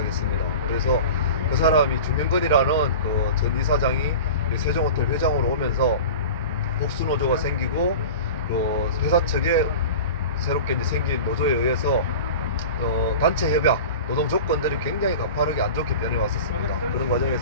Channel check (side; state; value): both; inverted; correlation -0.34